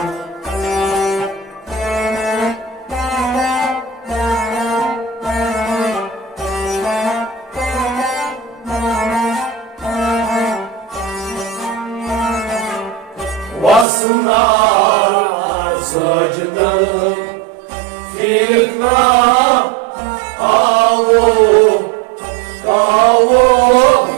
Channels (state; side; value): drops out; left; at 13.9 s